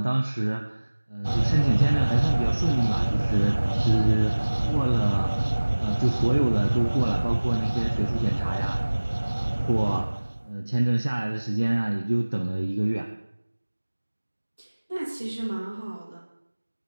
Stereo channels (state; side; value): inverted; both; correlation -1.00